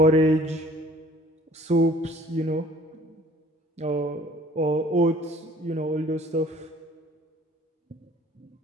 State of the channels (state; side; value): normal; both; correlation 0.53